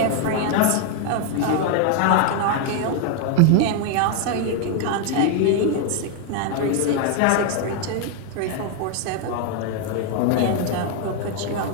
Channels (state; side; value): different; both; correlation 0.01